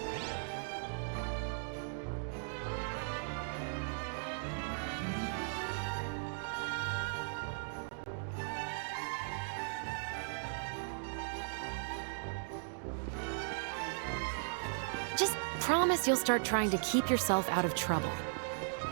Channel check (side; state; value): left; silent; digital silence